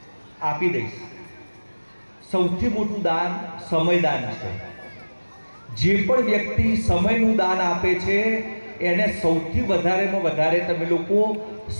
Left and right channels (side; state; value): both; inverted; correlation -1.00